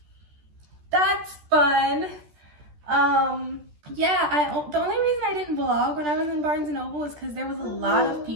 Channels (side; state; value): left; late; 13 ms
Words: that's fun. Yeah, the only reason I didn't vlog when I was in Barnes & Noble is because there was a lot of